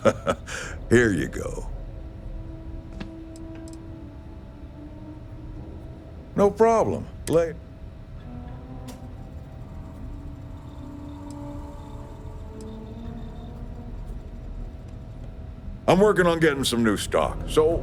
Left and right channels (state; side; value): identical; both; correlation 1.00